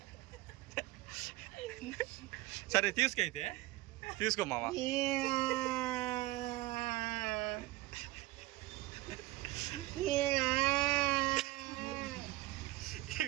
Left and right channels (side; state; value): left; quieter; 18.4 dB